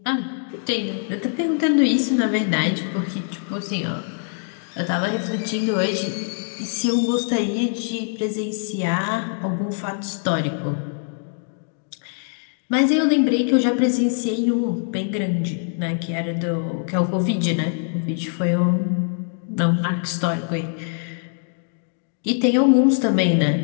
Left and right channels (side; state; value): right; silent; 64 dB below the other